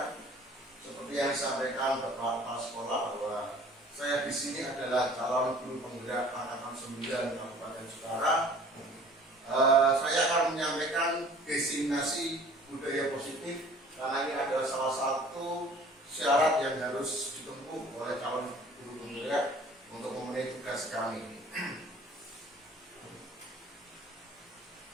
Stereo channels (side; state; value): both; normal; correlation 0.50